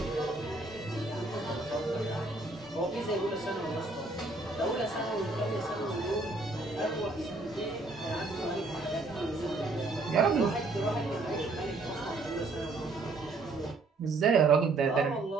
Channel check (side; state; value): left; quieter; 3.3 dB